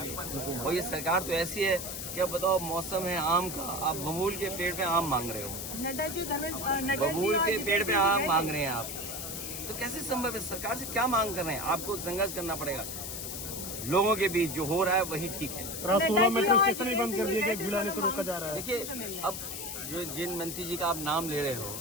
और ये सरकार तो ऐसी है कि अब बताओ, मौसम है आम का, आप बबूल के पेड़ पे आम मांग रहे हो, बबूल के पेड़ पे आम मांग रहे हैं आप, तो कैसे संभव है? सरकार से क्या मांग कर रहे हैं? आपको संघर्ष करना पड़ेगा। लोगों के बीच जो हो रहा है वही ठीक है। 16 मेट्रो स्टेशन ही बंद कर दिए गए, भिड़ाने से रोका जा रहा है। देखिए, अब जिन मंत्री जी का आप नाम ले रहे हो,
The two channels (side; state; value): left; noise; hiss, 6 dB below the sound